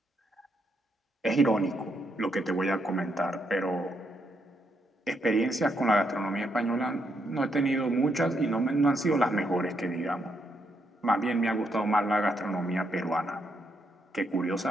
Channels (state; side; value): normal; both; correlation 0.78